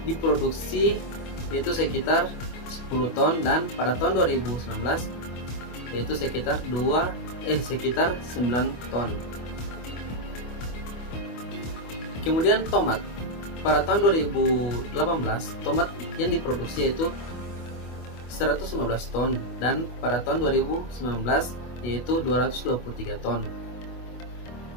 diproduksi yaitu sekitar 10 ton dan pada tahun 2019 yaitu sekitar 9 ton. Kemudian tomat. Pada tahun 2018 tomat yang diproduksi yaitu 115 ton dan pada tahun 2019 yaitu 223 ton.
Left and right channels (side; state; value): right; late; 25 ms